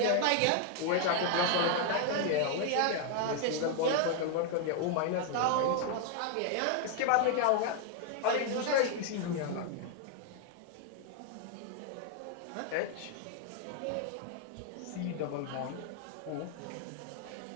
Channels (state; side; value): different; both; correlation 0.00